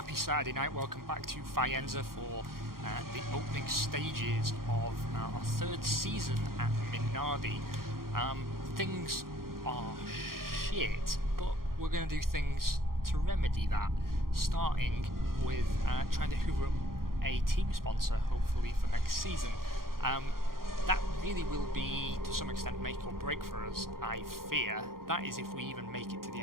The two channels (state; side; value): late; left; 0.92 ms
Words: Saturday night, welcome back to Faenza for the opening stages of our third season at Minardi. Things are shit, but we're going to do things to remedy that, starting with trying to hoover up a team sponsor, hopefully for next season. That really will be, to some extent, make or break for us, I fear. That is if we even make it to the